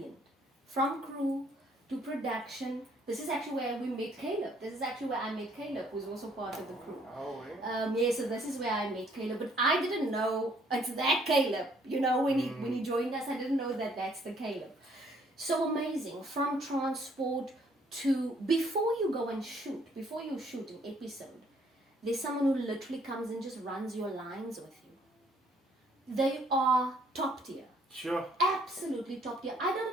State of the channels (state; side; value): normal; both; correlation 0.64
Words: From crew to production. This is actually where we met Caleb. This is actually where I met Caleb, who's also part of the crew. Oh, yeah. Yeah, so this is where I met Caleb. But I didn't know it's that Caleb. You know, when he joined us, I didn't know that that's the Caleb. So amazing. From transport to before you go and shoot, before you shoot an episode, there's someone who literally comes and just runs your lines with you. They are top tier. Sure. Absolutely top tier. I